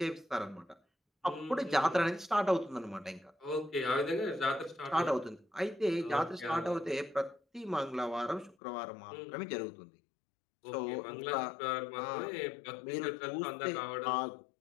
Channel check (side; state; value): right; drops out; at 8.6 s